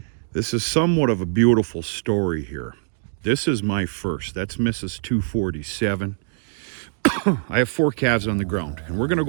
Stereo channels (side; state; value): left; silent; digital silence